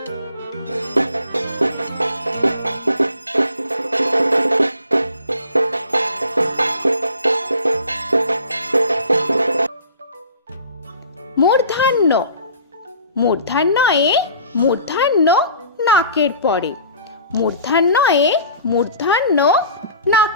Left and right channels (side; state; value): both; inverted; correlation -0.46